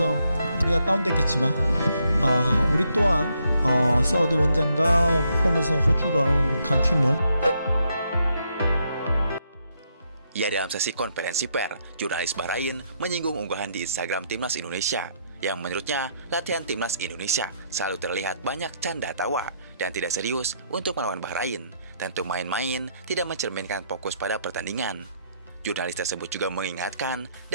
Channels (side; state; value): both; inverted; correlation -0.75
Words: 우리가 다운됐겠지만 우리 또한 사우디 원정과 홈에서 호주라는 강팀을. Ya, dalam sesi konferensi pers, jurnalis Bahrain menyinggung unggahan di Instagram Timnas Indonesia yang menurutnya latihan Timnas Indonesia selalu terlihat banyak canda tawa dan tidak serius untuk melawan Bahrain. Tentu main-main tidak mencerminkan fokus pada pertandingan. Jurnalis tersebut juga mengingatkan